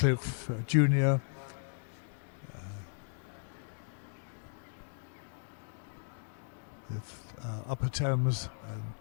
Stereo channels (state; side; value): silent; right; digital silence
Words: Jr. With Upper Thames and